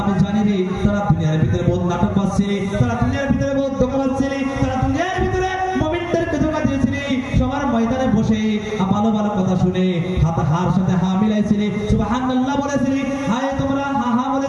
আমি জানি রে তারা দুনিয়ার ভিতরে বহুত নাটক করছে, তারা দুনিয়ার ভিতরে বহুত ধোঁকাবাজ ছিল, তারা দুনিয়ার ভিতরে মুমিনদেরকে ধোঁকা দিয়েছিল, সবার ময়দানে বসে ভালো ভালো কথা শুনে হার সাথে হা মিলাইছিল, সুবহানাল্লাহ বলেছিল, হায় তোমরা হা হা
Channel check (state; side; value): identical; both; correlation 1.00